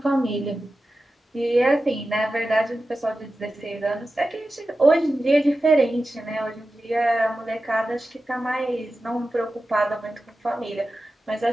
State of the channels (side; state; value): both; normal; correlation 0.93